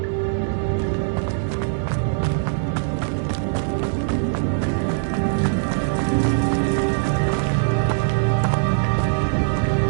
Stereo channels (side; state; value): left; silent; 64 dB below the other